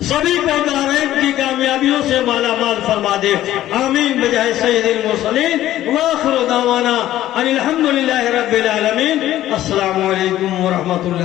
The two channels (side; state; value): right; quieter; 13.7 dB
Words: سبھی کو دارین کی کامیابیوں سے مالا مال فرما دے۔ آمین بجائے سید المرسلین وآخر دعوانا ان الحمدللہ رب العالمین۔ السلام علیکم ورحمۃ